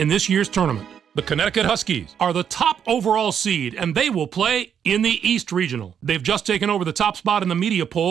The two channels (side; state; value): left; quieter; 8.2 dB